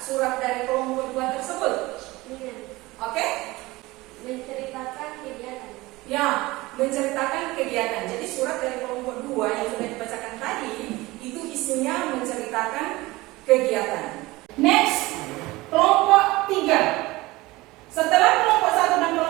surat dari kelompok 2 tersebut? Oke? Menceritakan kegiatan. Ya, menceritakan kegiatan. Jadi surat dari kelompok 2 yang sudah dibacakan tadi itu isinya menceritakan kegiatan. Next, kelompok 3. Setelah kelompok 1 dan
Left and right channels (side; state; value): left; quieter; 20.4 dB